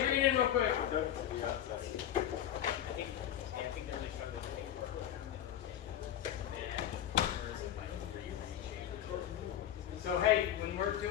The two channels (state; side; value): quieter; right; 11.0 dB